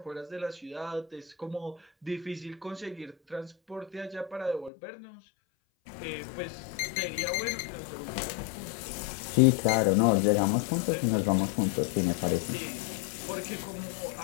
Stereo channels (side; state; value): right; drops out; at 4.7 s